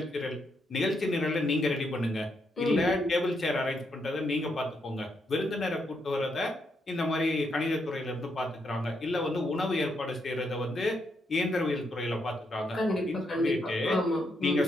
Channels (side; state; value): both; normal; correlation 0.79